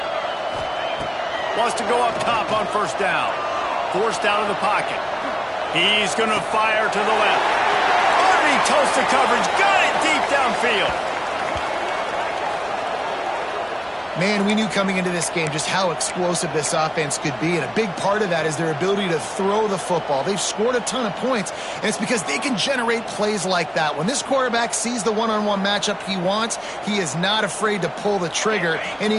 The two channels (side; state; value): both; identical; correlation 1.00